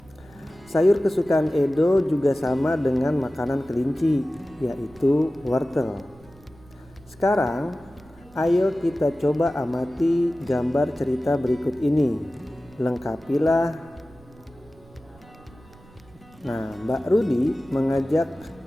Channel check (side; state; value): right; noise; rumble, 25 dB below the sound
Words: Sayur kesukaan Edo juga sama dengan makanan kelinci, yaitu wortel. Sekarang, ayo kita coba amati gambar cerita berikut ini. Lengkapilah. Nah, Mbak Rudi mengajak